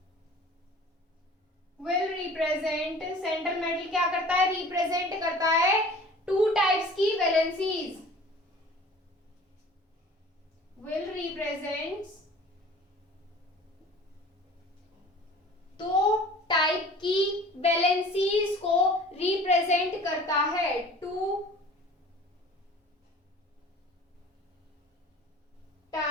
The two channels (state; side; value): normal; both; correlation 0.45